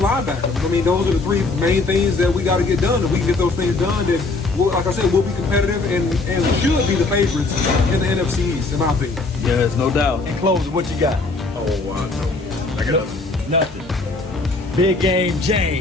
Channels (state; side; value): quieter; right; 3.5 dB